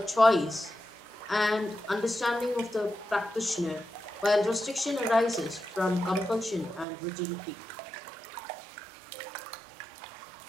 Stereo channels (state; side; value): drops out; left; at 6.9 s